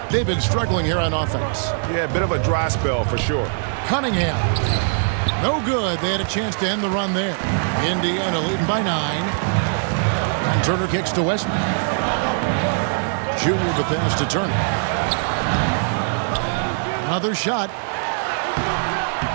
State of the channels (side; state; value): left; silent; digital silence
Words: They've been struggling here on offense. Yeah, a bit of a dry spell for sure. Cunningham. No good. They had a chance to end the run there. Indiana leading by 9. And Turner kicks to Westbrook. Junior the pass to Turner. Another shot.